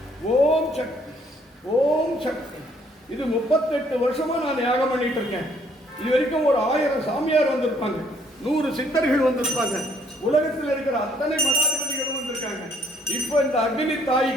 ஓம் சக்தி, ஓம் சக்தி. இது 38 வருஷமா நான் யாகம் பண்ணிட்டு இருக்கேன். இது வரைக்கும் ஒரு 1000 சாமியார் வந்திருப்பாங்க, 100 சித்தர்கள் வந்திருப்பாங்க, உலகத்தில் இருக்கிற அத்தனை மடாதிபதிகளும் வந்திருக்காங்க. இப்போ இந்த அக்னி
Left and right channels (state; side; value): normal; both; correlation 0.66